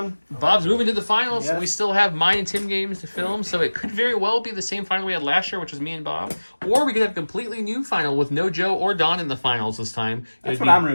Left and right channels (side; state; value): both; inverted; correlation -1.00